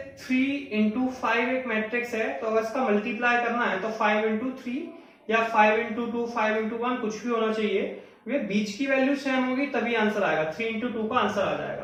3 इंटू 5 एक मैट्रिक्स है, तो अगर इसका मल्टीप्लाई करना है तो 5 इंटू 3 या 5 इंटू 2, 5 इंटू 1 कुछ भी होना चाहिए, वे बीच की वैल्यू सेम होगी तभी आंसर आएगा। 3 इंटू 2 का आंसर आ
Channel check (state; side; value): identical; both; correlation 1.00